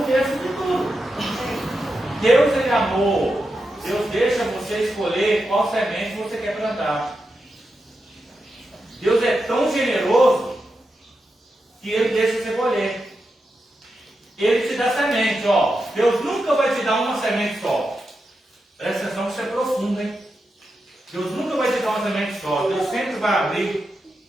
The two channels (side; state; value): both; normal; correlation 0.88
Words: de tudo. Deus, Ele é amor. Deus deixa você escolher qual semente você quer plantar. Deus é tão generoso que Ele deixa você colher. Ele te dá semente, Deus nunca vai te dar uma semente só. Presta atenção que isso é profundo, hein? Deus nunca vai te dar uma semente só. Deus sempre vai abrir